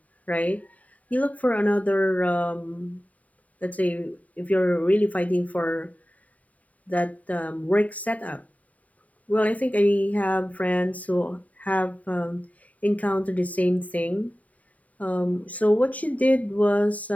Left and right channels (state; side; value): late; right; 0.071 ms